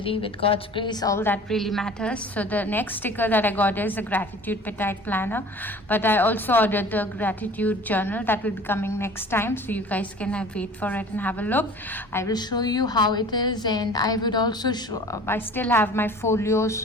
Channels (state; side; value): normal; both; correlation 0.45